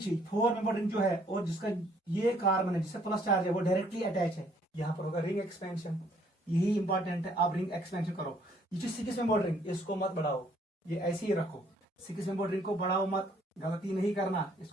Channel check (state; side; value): normal; both; correlation 0.64